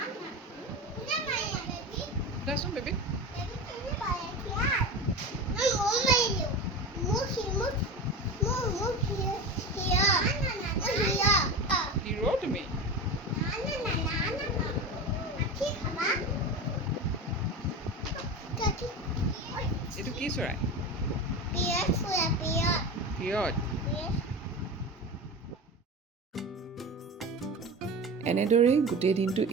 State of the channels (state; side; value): normal; both; correlation 0.27